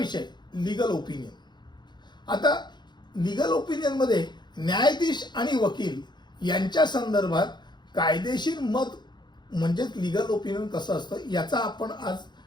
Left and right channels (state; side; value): late; right; 0.21 ms